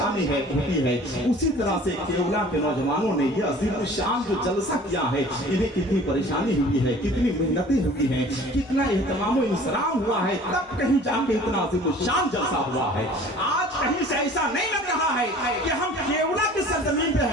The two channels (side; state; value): both; normal; correlation 0.47